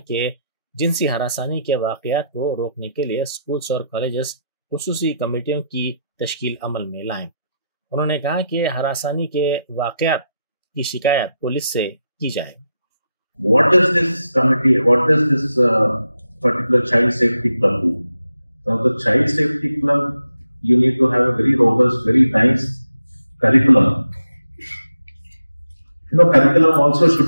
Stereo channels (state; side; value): inverted; both; correlation -0.85